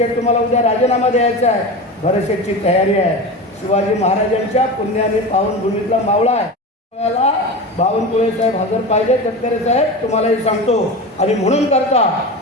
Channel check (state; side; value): normal; both; correlation 0.26